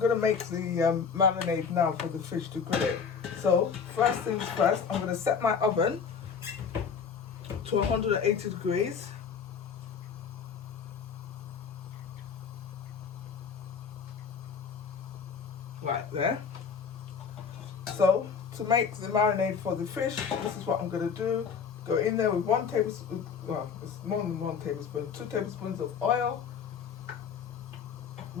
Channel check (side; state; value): right; quieter; 6.3 dB